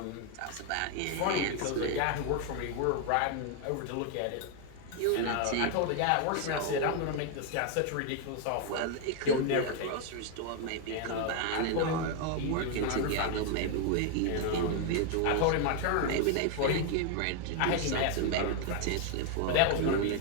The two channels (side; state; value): both; different; correlation 0.01